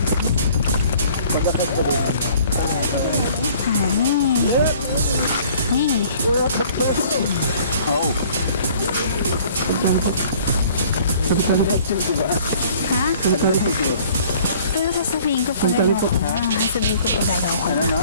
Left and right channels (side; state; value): both; inverted; correlation -0.54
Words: Honey. Oo. Ha? Pero sasabihin ko pag ayaw ko na. Sasabihin ko pag ayaw ko